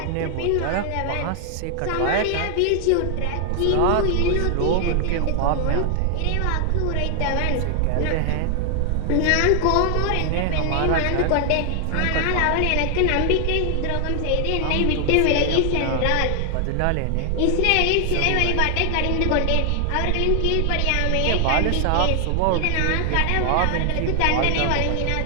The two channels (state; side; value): different; both; correlation 0.00